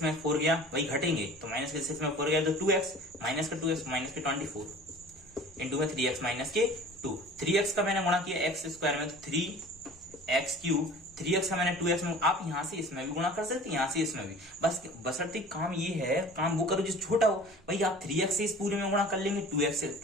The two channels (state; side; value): noise; right; rumble, 29 dB below the sound